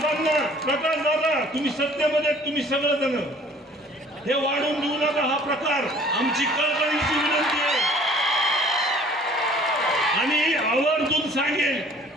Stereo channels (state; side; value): normal; both; correlation 0.53